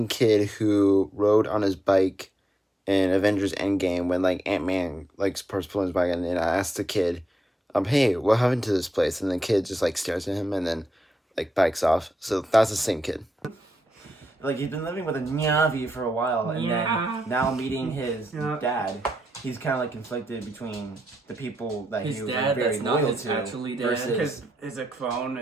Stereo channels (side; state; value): both; normal; correlation 0.84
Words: kid who rode on his bike in Avengers Endgame when like Ant-Man like starts pulling his bike, and I asked the kid, hey, what happened to this place? And the kid just like stares at him and then like bikes off. So that's the same kid. Like he's been living with a Navi for a while, and Yeah. then now meeting his Yeah. dad, he's kind of like conflicted between the people that His he was dad, like, very that's not loyal his to actually dad. versus Because it's a clone